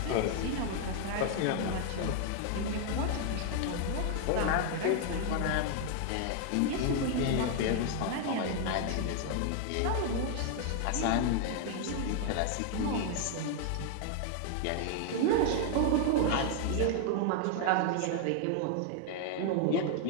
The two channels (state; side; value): different; both; correlation 0.00